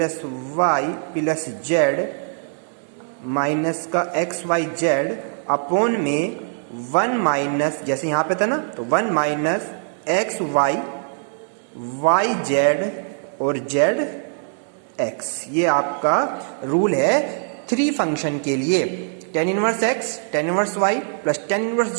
y plus z minus का एक्स वाई जेड अपॉन में 1 माइनस, जैसे यहाँ पे था ना, तो 1 minus x y y z और जेड एक्स। ये आपका रूल है 3 फंक्शन के लिए, tan inverse x, tan inverse y plus tan inverse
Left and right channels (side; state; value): left; silent; digital silence